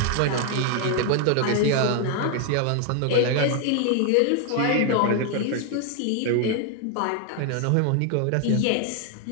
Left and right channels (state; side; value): different; both; correlation 0.00